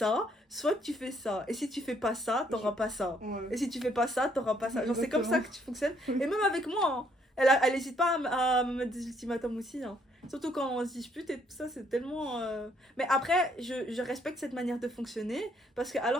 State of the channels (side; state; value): both; normal; correlation 0.68